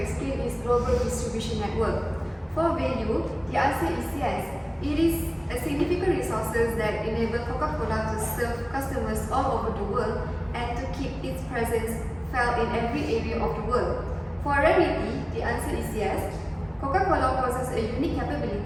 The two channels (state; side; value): identical; both; correlation 1.00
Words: explain is global distribution network. For value, the answer is yes. It is a significant resources that enable Coca-Cola to serve customers all over the world and to keep its presence felt in every area of the world. For rarity, the answer is yes. Coca-Cola possesses a unique